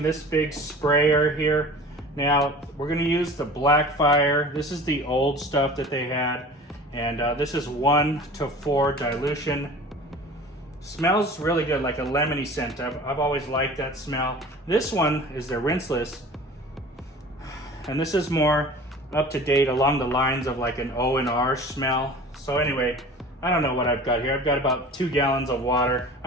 this big sprayer here. Now, we're gonna use the BLACKFIRE. This is the old stuff that they had. And this is 1:4 dilution. Smells really good, like a lemony scent. I've always liked that smell. This one is the Rinseless. And this is more up to date along the lines of like an O&R smell. So anyway, I don't know what I've got here. I've got about 2 gallons of water.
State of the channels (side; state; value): both; normal; correlation 0.41